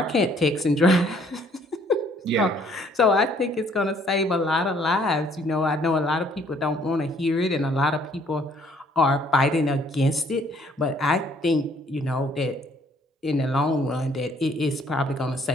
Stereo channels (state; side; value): normal; both; correlation 0.62